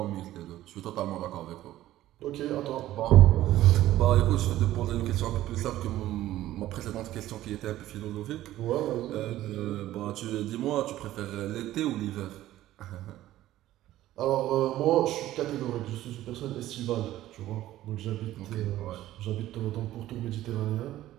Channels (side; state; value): left; quieter; 14.4 dB